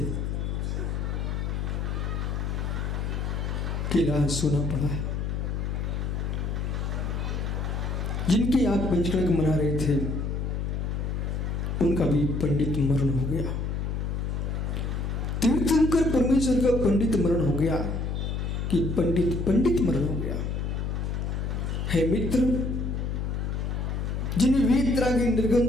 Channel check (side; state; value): left; noise; hum, 1 dB below the sound